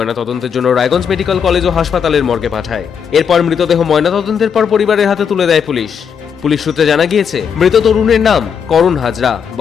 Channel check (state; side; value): quieter; right; 7.1 dB